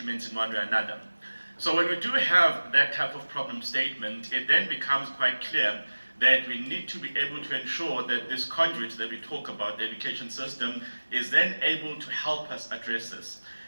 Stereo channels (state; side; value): inverted; both; correlation -1.00